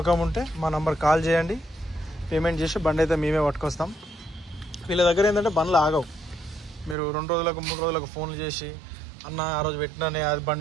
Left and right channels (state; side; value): drops out; left; at 7.0 s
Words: ఉంటే మా నంబర్ కాల్ చేయండి. పేమెంట్ చేసి బండి అయితే మేమే పట్టుకొస్తాం. వీళ్ళ దగ్గర ఏంటంటే బండ్లు ఆగవు. మీరు 2 రోజులకు 3 రోజులకు ఫోన్లు చేసి అన్న ఆ రోజు పెట్టినానే అది